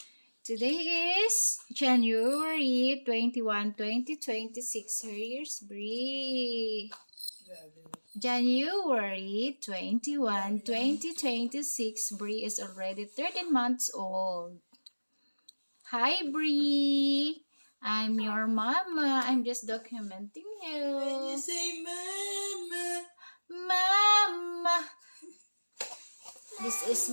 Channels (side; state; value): both; inverted; correlation -1.00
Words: Today is January 21, 2026. Here's Bree. January 21, 2026. Bree is already 13 months old. Hi, Bree. I'm your mama. I'm just documenting you. When you say mama. Mama. This is